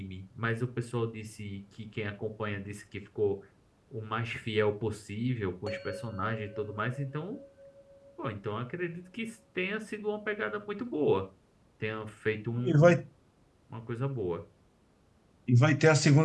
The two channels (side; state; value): both; identical; correlation 1.00